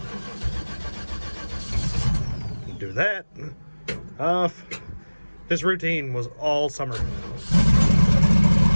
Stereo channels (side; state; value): both; inverted; correlation -1.00